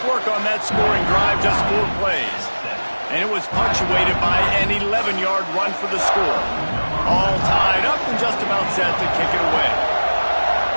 work on that scoring drive, just 4 plays. And it was punctuated by an 11-yard run for the score. All tied up and just about set to kick it away.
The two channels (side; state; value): both; inverted; correlation -1.00